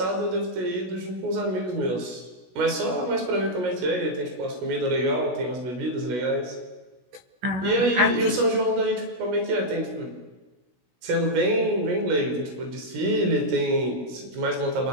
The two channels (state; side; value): late; left; 16 ms